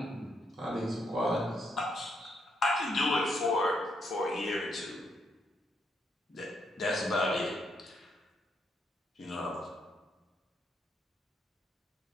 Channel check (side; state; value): both; normal; correlation 0.76